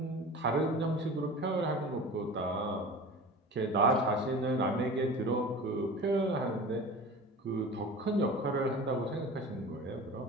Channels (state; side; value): normal; both; correlation 0.36